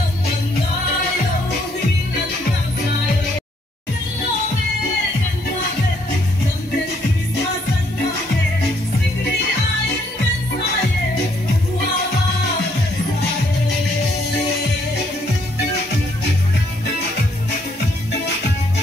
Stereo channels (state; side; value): normal; both; correlation 0.69